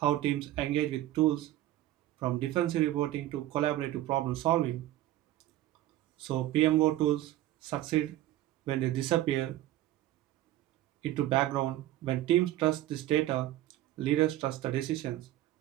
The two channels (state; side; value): quieter; left; 14.5 dB